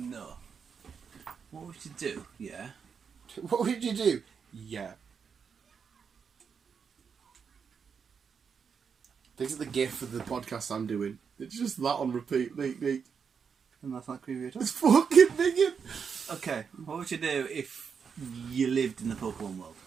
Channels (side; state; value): left; quieter; 6.4 dB